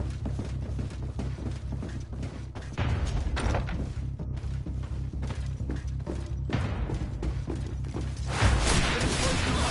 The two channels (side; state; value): both; identical; correlation 1.00